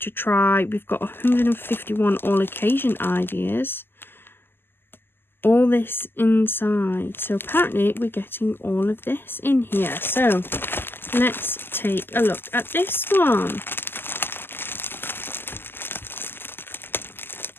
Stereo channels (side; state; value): right; late; 0.10 ms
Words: try. We've got 151 all occasion ideas. All this inside. So apparently we're getting all of this in here. So let's take a look at this one.